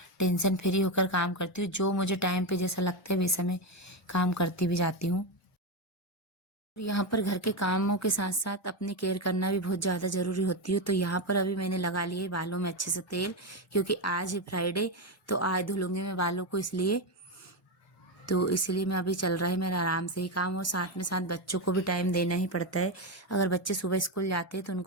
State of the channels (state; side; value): normal; both; correlation 0.11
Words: टेंशन फ्री होकर काम करती हूँ। जो मुझे टाइम पे जैसा लगता है वैसा मैं काम करती भी जाती हूँ। यहाँ पर घर के कामों के साथ साथ अपनी केयर करना भी बहुत ज़्यादा ज़रूरी होती है। तो यहाँ पर अभी मैंने लगा लिए बालों में अच्छे से तेल, क्योंकि आज है फ्राइडे तो आज धुलूंगी मैं बालों को, इसलिए मैं अभी चल रहा है मेरा आराम से ही काम। और साथ में साथ बच्चों को भी टाइम देना ही पड़ता है। अगर बच्चे सुबह स्कूल जाते हैं तो